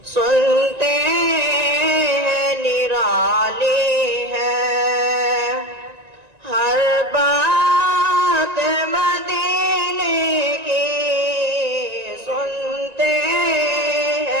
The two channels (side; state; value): left; late; 1.9 ms